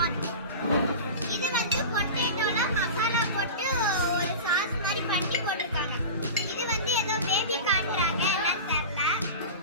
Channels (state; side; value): inverted; both; correlation -0.30